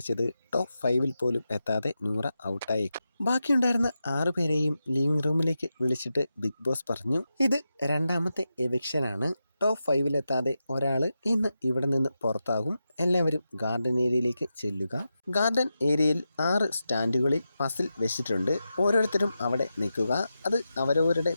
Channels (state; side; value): inverted; both; correlation -0.89